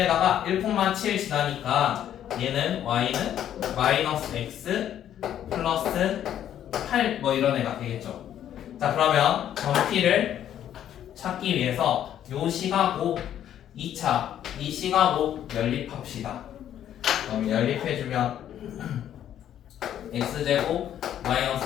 1,7 지나니까 얘는 y는 마이너스 x 플러스 8 뭐 이런 애가 되겠죠. 자 그러면 점피를 찾기 위해서 요 시가고 2차 이 시가고 연립합시다. 그럼 연립해주면 x제곱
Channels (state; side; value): quieter; right; 10.7 dB